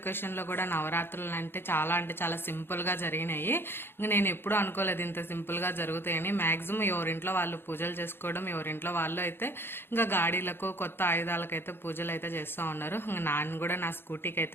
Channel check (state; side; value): late; right; 0.11 ms